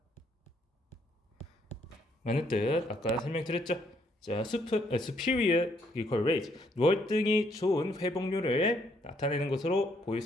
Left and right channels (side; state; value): both; normal; correlation 0.70